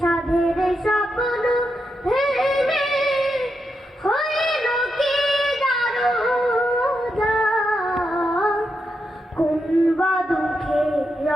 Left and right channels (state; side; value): normal; both; correlation 0.85